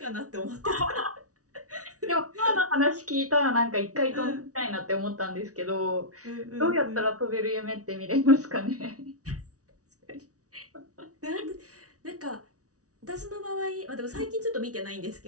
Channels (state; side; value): late; left; 0.67 ms